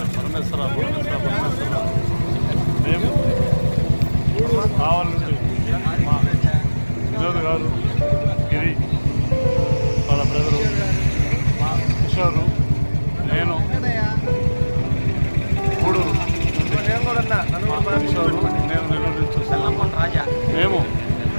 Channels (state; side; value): inverted; both; correlation -1.00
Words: పరమేశ్వర పరమేశ్వర పరమేశ్వర. మేము కావాలి నుండి మా వినోద్ గారు, గిరి, వాళ్ళ బ్రదరు, మా కిషోరు, నేను గూడూరు, కిషోరు, నేను నెల్లూరు నుంచి చూస్తున్నాము. మేము